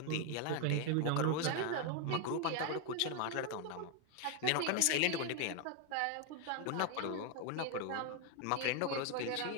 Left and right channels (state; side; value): different; both; correlation 0.01